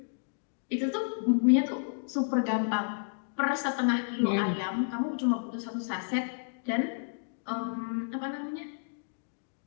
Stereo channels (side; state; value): right; silent; digital silence